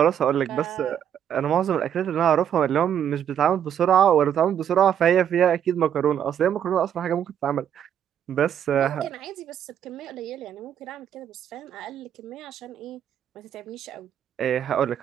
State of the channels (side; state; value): left; quieter; 9.3 dB